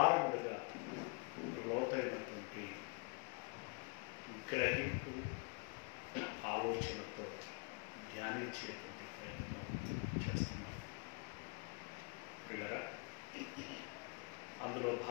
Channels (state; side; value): quieter; right; 30.5 dB